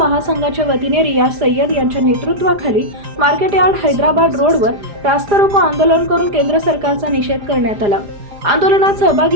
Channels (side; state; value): left; late; 4.9 ms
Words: वतीने रियाज सय्यद यांच्या नेतृत्वाखाली मार्केट यार्ड हैदराबाद रोडवर रास्ता रोको आंदोलन करून केंद्र सरकारचा निषेध करण्यात आला। आंदोलनात